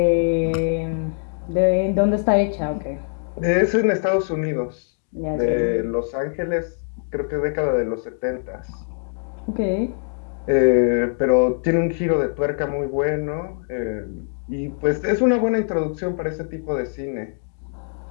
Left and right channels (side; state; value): right; silent; digital silence